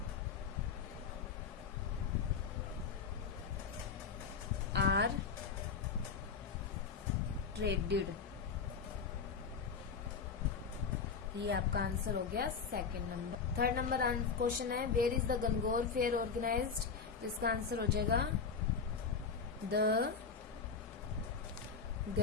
are traded। ये आपका आंसर हो गया second number. Third number question है, where is the Gangaur fair organised. तो इसका आंसर हो जाएगा, the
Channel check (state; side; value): quieter; right; 5.7 dB